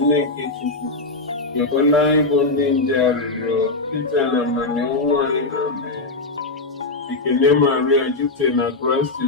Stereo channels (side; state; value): right; quieter; 3.3 dB